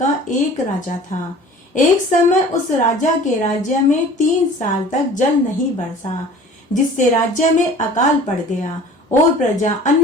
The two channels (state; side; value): normal; both; correlation 0.45